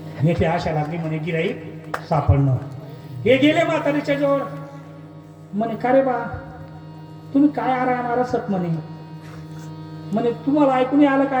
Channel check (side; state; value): both; identical; correlation 1.00